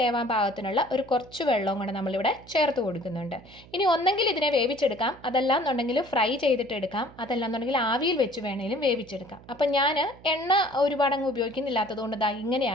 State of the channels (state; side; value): noise; right; hum, 22 dB below the sound